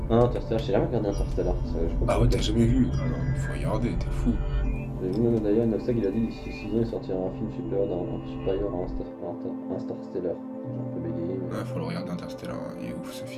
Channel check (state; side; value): identical; both; correlation 1.00